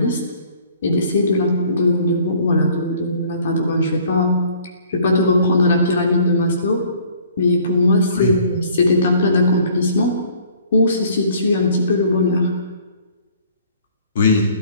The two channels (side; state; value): both; inverted; correlation -0.56